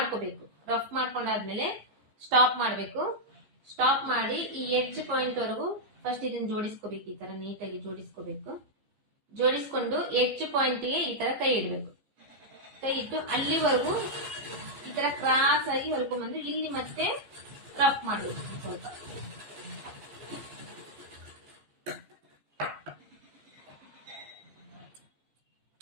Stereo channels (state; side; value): late; left; 15 ms